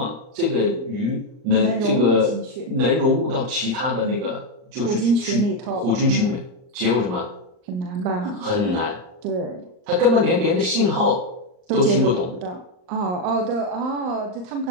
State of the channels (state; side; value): late; left; 39 ms